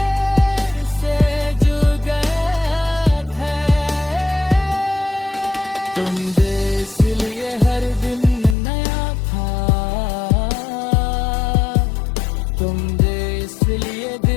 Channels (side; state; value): right; drops out; at 8.6 s